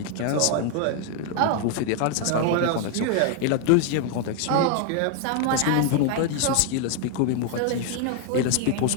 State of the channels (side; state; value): both; different; correlation 0.00